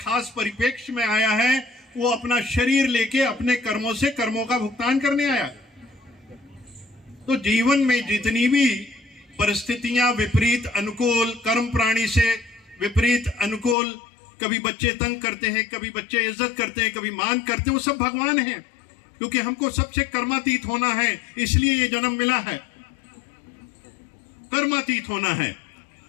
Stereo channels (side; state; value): right; drops out; at 13.8 s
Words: परिप्रेक्ष्य में आया है, वो अपना शरीर लेके अपने कर्मों से कर्मों का भुगतान करने आया। तो जीवन में जितनी भी परिस्थितियां विपरीत अनुकूल, कर्म प्राणी से विपरीत अनुकूल, कभी बच्चे तंग करते हैं, कभी बच्चे इज्जत करते हैं, कभी मान करते हैं, वो सब भगवान हैं। क्योंकि हमको सबसे कर्मातीत होना है, इसलिए ये जन्म मिला है, कर्मातीत होना है।